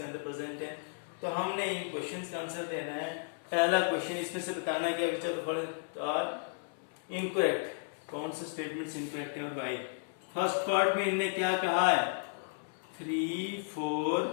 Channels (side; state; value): right; silent; 55 dB below the other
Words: अंदर प्रेजेंट है। तो हमने इन क्वेश्चंस का आंसर देना है। पहला क्वेश्चन इसमें से बताना है कि which of the following are incorrect, कौन से स्टेटमेंट्स इनकरेक्ट है और वाई। फर्स्ट पार्ट में इनने क्या कहा है, 3 4